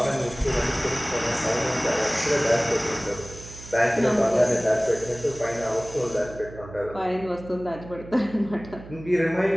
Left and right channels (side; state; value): right; noise; hum, 16 dB below the sound